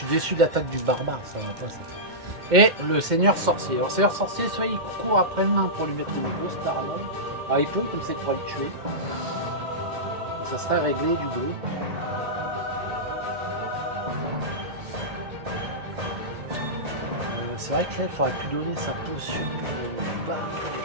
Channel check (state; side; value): late; left; 2.1 ms